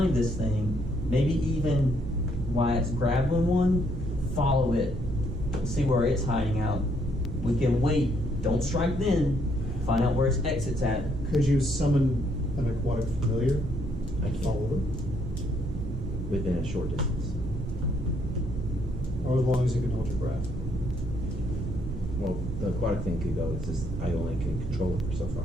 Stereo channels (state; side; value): noise; right; rumble, 6 dB below the sound